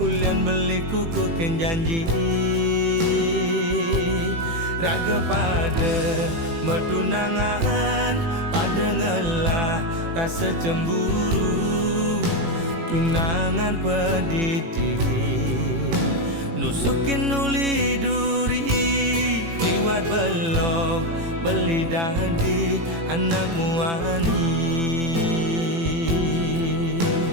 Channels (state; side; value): late; left; 18 ms